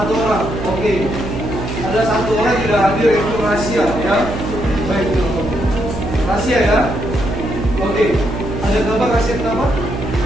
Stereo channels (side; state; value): right; noise; hum, 6 dB below the sound